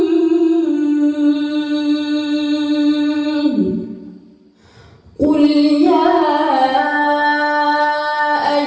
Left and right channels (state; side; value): identical; both; correlation 1.00